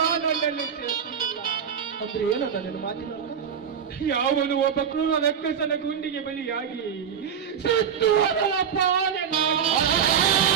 ನನ್ನಲ್ಲಿ ಶಕ್ತಿ ಇಲ್ಲ. ಅಂದ್ರೆ ಏನಂತ ನೀನು ಮಾತಿನ? ಯಾವನು ಒಬ್ಬ ಕ್ರೂರ ರಕ್ಕಸನ ಗುಂಡಿಗೆ ಬಲಿಯಾಗಿ ಸತ್ತು ಹೋದವಪ್ಪ.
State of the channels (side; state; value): left; quieter; 7.8 dB